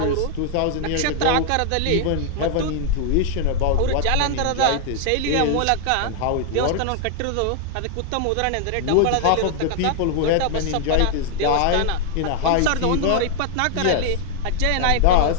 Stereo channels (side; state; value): both; different; correlation 0.00